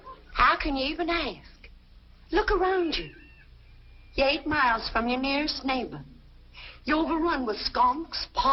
how can you even ask? Look around you. You're 8 miles from your nearest neighbor. You're overrun with skunks,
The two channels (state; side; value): identical; both; correlation 1.00